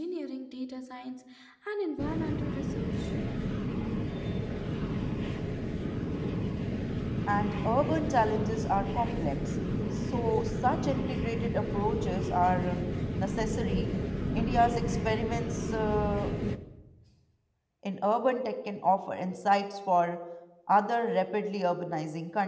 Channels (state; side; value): identical; both; correlation 1.00